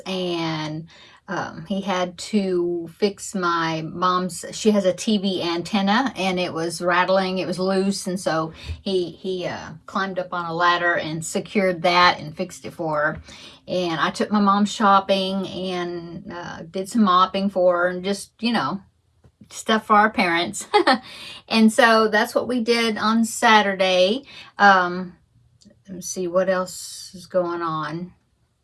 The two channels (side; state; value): both; identical; correlation 1.00